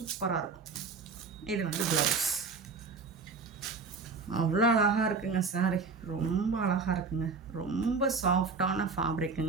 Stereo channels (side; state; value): left; quieter; 4.7 dB